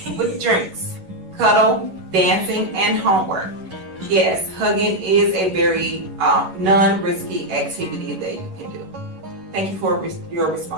with drinks, cuddle, dancing, and homework. Yes, hugging is a very non-risky activity that you can do. Thank you for your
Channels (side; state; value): left; late; 11 ms